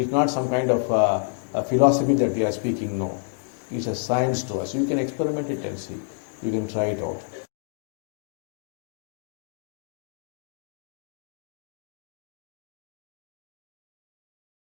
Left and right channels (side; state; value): right; silent; 59 dB below the other